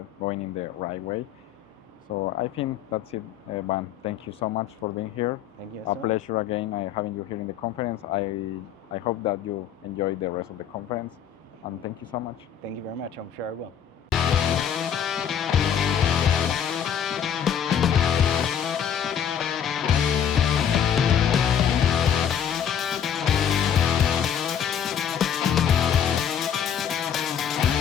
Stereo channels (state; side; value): quieter; right; 8.5 dB